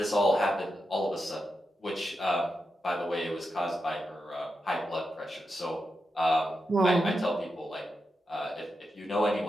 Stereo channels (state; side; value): normal; both; correlation 0.88